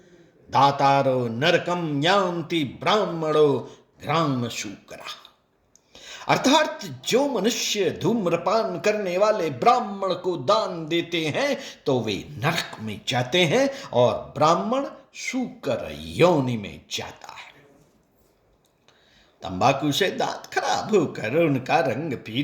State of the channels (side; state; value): both; identical; correlation 1.00